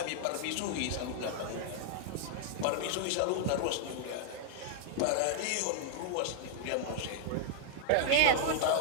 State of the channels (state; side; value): different; both; correlation -0.01